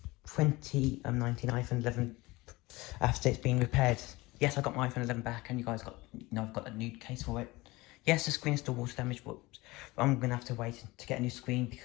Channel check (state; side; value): quieter; right; 21.4 dB